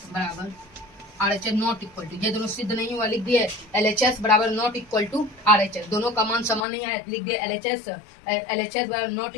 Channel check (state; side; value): drops out; right; at 6.7 s